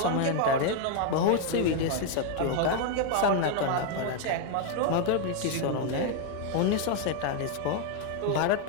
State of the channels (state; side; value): different; both; correlation 0.00